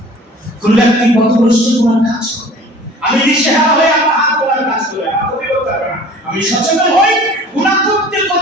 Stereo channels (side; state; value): both; normal; correlation 0.46